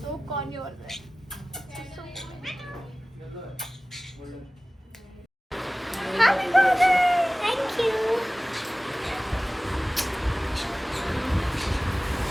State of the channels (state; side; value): normal; both; correlation 0.98